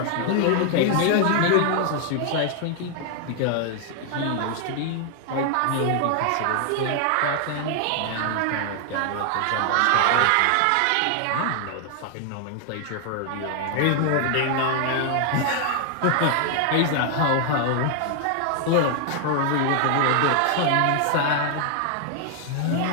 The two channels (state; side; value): different; both; correlation 0.00